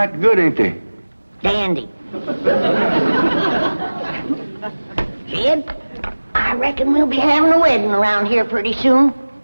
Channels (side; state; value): both; inverted; correlation -1.00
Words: good, ain't they? Dandy. Jed, I reckon we'll be having a wedding around here pretty soon.